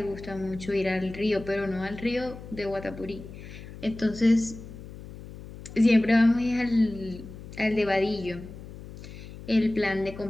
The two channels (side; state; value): left; noise; hum, 14 dB below the sound